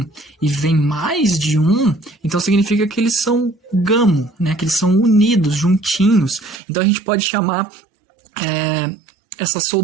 e vem mais de um, então significa que eles são gamo, né? Que eles são unidos, juntinhos. Então, a gente pode chamar essa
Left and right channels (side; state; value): left; drops out; at 6.6 s